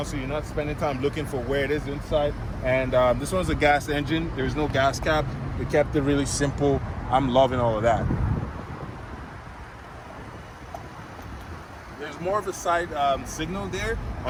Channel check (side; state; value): both; identical; correlation 1.00